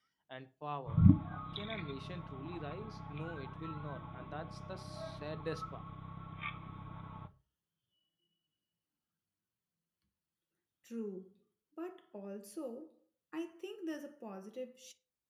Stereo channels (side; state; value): both; identical; correlation 1.00